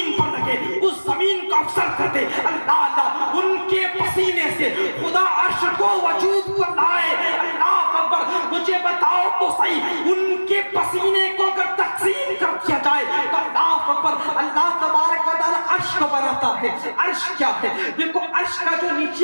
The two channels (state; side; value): inverted; both; correlation -1.00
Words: پر لگے اس زمین کو افسر کر دے، اللہ ان کے پسینے سے خدا عرش کو وجود پر لائے، اللہ اکبر، مجھے بتاؤ تو صحیح ان کے پسینے کو اگر تقسیم کر دیا جائے تو اللہ اکبر، اللہ تبارک و تعالی عرش کو بناتا ہے۔ عرش کیا ہے؟ دیکھو عرش کا جو